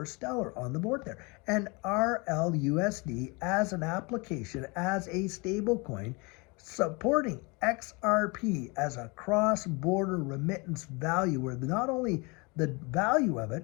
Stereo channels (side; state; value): right; quieter; 28.5 dB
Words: Stellar on the board there. And RLUSD as an application, as a stable coin, supporting XRP as a cross-border remittance value where not only the value of